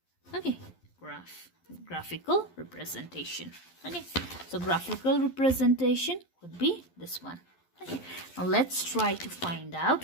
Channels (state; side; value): late; right; 11 ms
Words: Okay, graphical representation. Okay, so graphical representation would be this one. Okay, now let's try to find